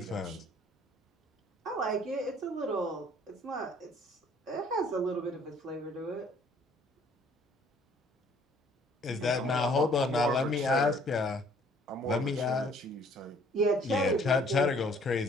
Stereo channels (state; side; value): normal; both; correlation 0.59